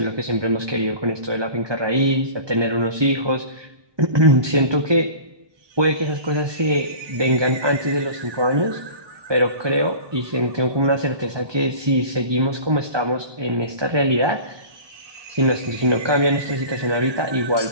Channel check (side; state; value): left; late; 1.2 ms